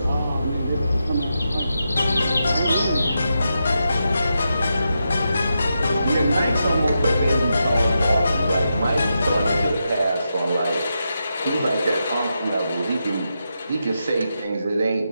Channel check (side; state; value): both; inverted; correlation -0.86